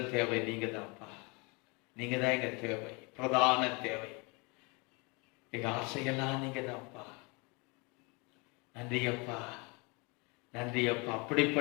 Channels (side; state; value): right; quieter; 29.2 dB